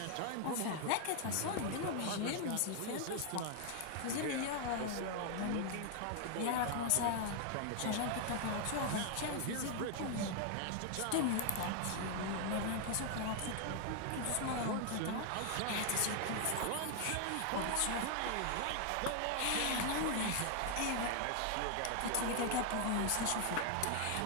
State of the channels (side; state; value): both; different; correlation 0.00